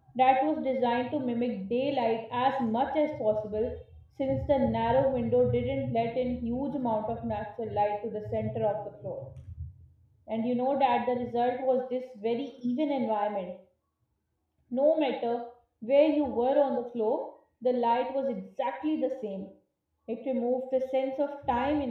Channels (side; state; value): both; identical; correlation 1.00